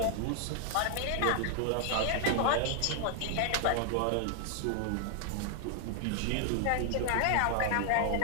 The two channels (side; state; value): both; different; correlation 0.00